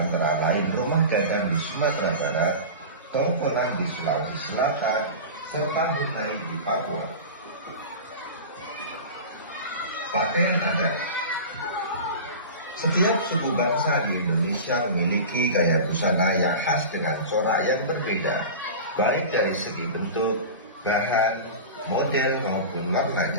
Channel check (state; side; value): inverted; both; correlation -0.30